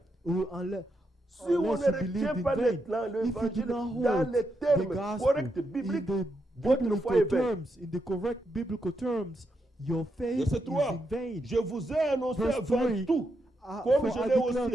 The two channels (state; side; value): normal; both; correlation 0.83